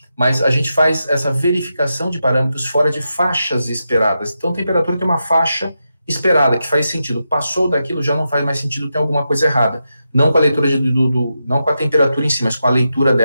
Mas a gente faz essa verificação de parâmetros fora de faixas esperadas. Então, a temperatura tem uma faixa esperada, que faz sentido. Passou daquilo, já não faz mais sentido, tem alguma coisa errada. Não com a leitura, não com a temperatura em si, mas com a leitura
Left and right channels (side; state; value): both; inverted; correlation -0.88